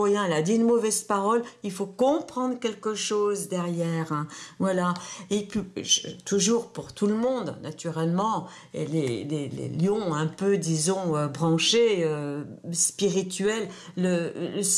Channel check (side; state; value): both; identical; correlation 1.00